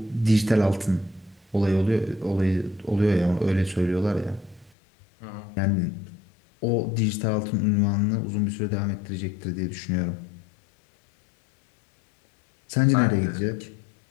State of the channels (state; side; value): drops out; right; at 4.7 s